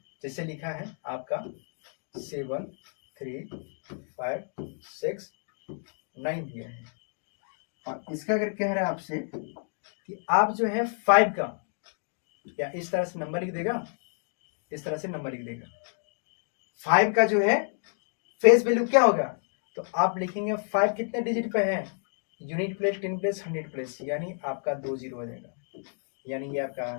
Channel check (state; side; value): silent; right; 58 dB below the other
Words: जैसे लिखा है आपका 7 3 5 6 9 दिया है, और इसका अगर कह रहा है आपसे कि आप जो है 5 का, या इस तरह से नंबर लिख देगा, इस तरह से नंबर लिख देगा, 5 का जो है फेस वैल्यू क्या होगा, तो आप लिखेंगे 5 कितने डिजिट पे है, यूनिट प्लेस 10 प्लेस 100 प्लेस, यानी आपका 2 0 हो जाएगा। यानी ये आपका